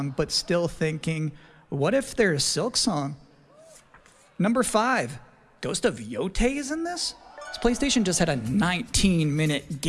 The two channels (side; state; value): both; identical; correlation 1.00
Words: but still thinking, what if there's Silk Song? Number 5, Ghost of Yotei is in this? This PlayStation just had a 19-minute